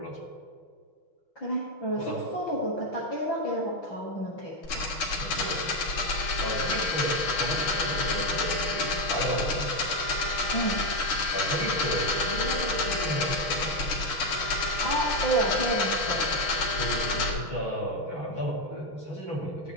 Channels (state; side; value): late; right; 6.1 ms